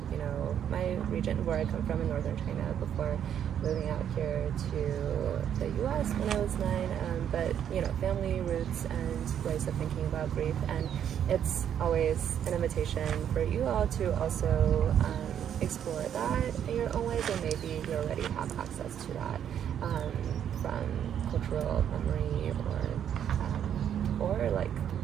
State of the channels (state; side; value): quieter; left; 9.3 dB